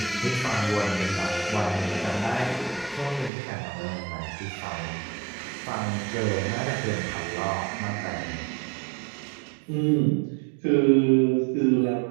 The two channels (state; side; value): drops out; left; at 3.3 s